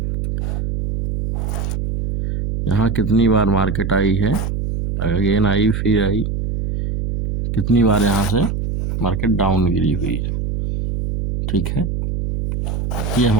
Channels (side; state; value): right; noise; hum, 2 dB below the sound